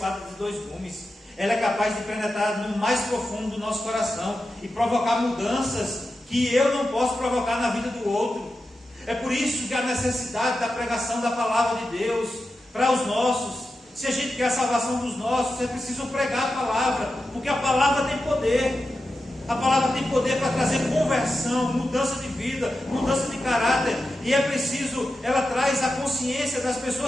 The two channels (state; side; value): normal; both; correlation 0.91